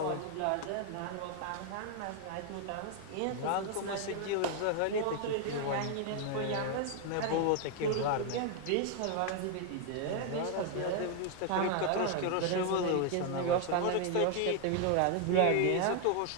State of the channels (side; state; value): both; different; correlation 0.00